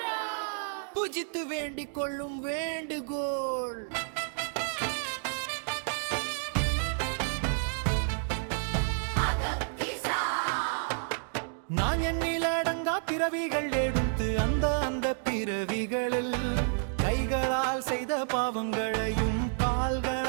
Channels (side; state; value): left; silent; digital silence